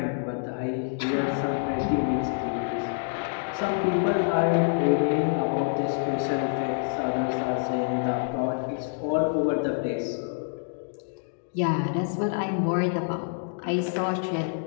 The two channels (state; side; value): silent; right; digital silence